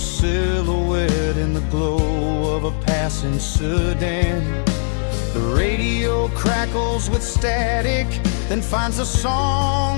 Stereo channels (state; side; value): silent; right; digital silence